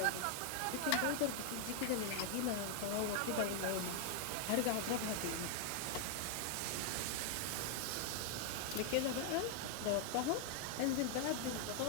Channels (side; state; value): both; different; correlation 0.00